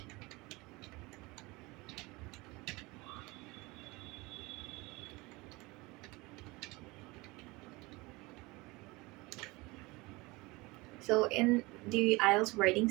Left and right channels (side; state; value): left; quieter; 23.2 dB